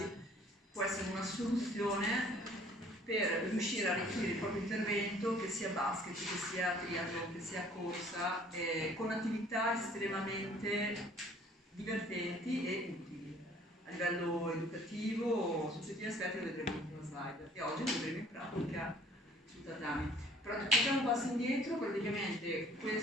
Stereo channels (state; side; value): normal; both; correlation 0.55